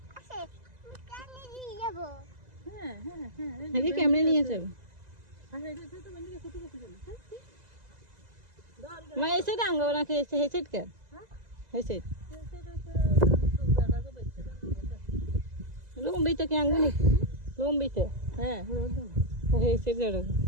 আছে। পানি দিয়ে যাব। হ্যাঁ হ্যাঁ হ্যাঁ আগে ক্যামেরা নিয়ে যাবে। মা এসে ডাঙ্গো নাকি এসে হেসেট কে? হেসেট লম্বিতে কি আঙ্গুনি? লম্বিতে হ্যাঁ হেসেট জড়ো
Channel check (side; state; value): left; late; 2.0 ms